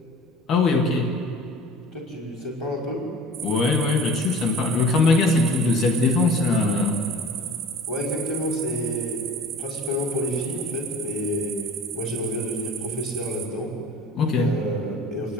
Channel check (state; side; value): normal; both; correlation 0.43